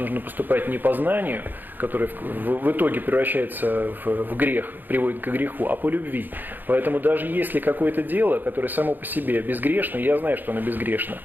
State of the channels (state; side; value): late; left; 0.089 ms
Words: поступать не по знанию, которое в итоге превращается в грех, приводит к греху, а по любви. Поэтому даже если какое-то дело, которое само по себе безгрешно, я знаю, что оно безгрешно,